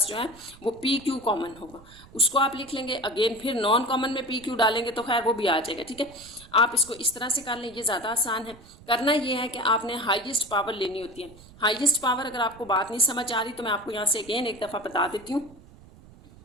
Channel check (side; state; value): right; noise; rumble, 22 dB below the sound